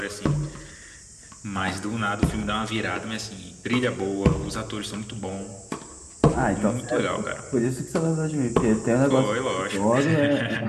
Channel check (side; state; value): both; identical; correlation 1.00